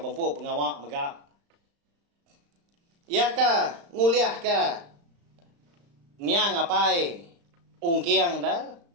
pengawak megak. Ya ka nguliah ka niang apai ungkiang dah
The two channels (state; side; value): late; left; 35 ms